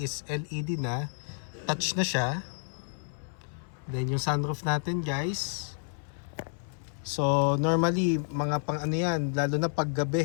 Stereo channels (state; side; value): silent; right; 58 dB below the other